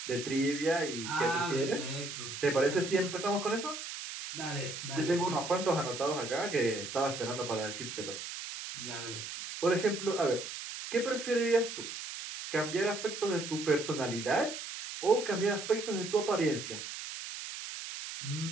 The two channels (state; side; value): noise; right; hiss, 8 dB below the sound